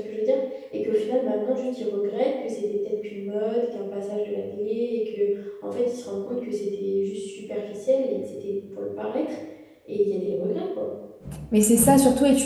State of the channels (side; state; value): both; identical; correlation 1.00